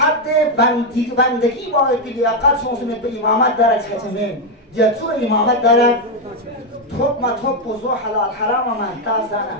بندگی باید که لیاقت سونسونت به امامت دارد چهتمین جتو امامت دارد توب ما توب بزو حلال حرام من تازانه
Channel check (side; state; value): both; normal; correlation 0.04